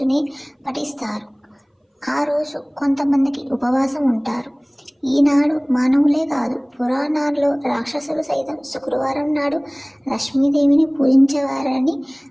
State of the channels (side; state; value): both; identical; correlation 1.00